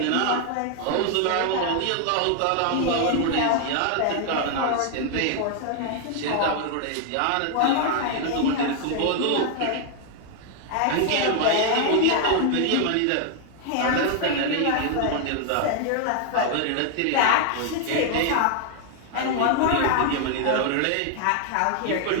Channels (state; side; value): different; both; correlation 0.00